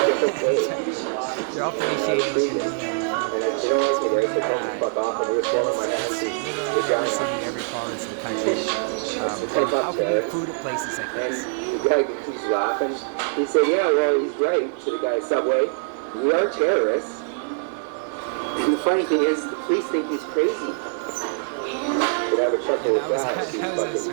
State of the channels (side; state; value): left; silent; digital silence